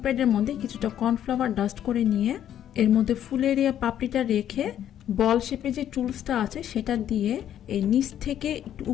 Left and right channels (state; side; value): quieter; right; 10.6 dB